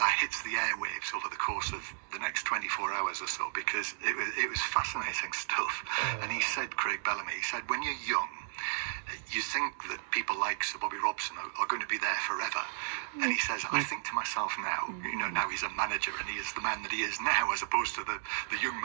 hits the airwaves over the course of the next 24 hours or so, because it was fascinating stuff. And he said, Craig Bellamy, he said, when you're young, you think that people like Sir Bobby Robson are going to be there forever. And he says, I think to myself now, now he's a manager and he is the man that he is now, as opposed to the young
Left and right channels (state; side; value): silent; left; digital silence